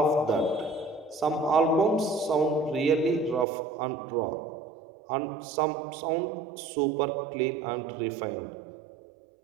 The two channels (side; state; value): left; drops out; at 3.5 s